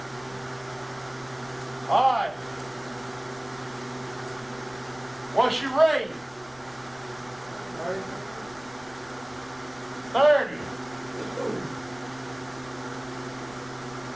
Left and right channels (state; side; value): noise; left; rumble, 23 dB below the sound